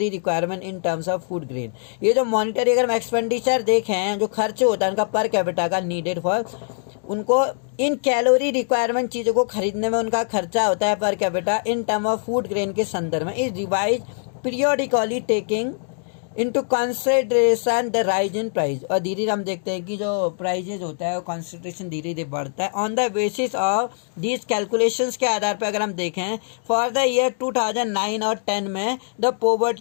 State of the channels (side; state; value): right; silent; 64 dB below the other